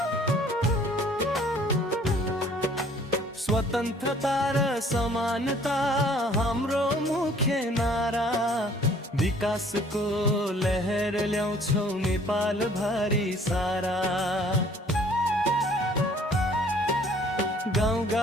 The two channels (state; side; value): normal; both; correlation 0.56